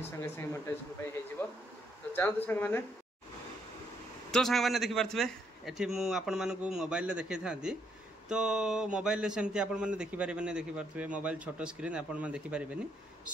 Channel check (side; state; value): both; normal; correlation 0.73